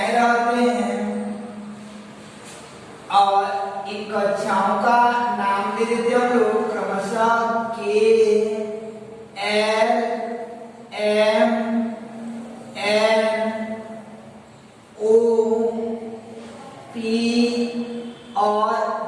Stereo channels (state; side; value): identical; both; correlation 1.00